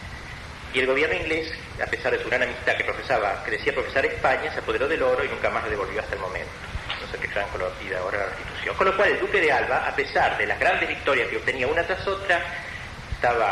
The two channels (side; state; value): both; identical; correlation 1.00